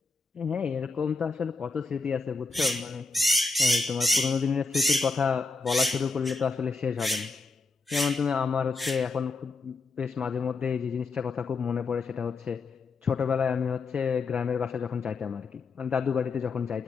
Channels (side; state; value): right; quieter; 4.0 dB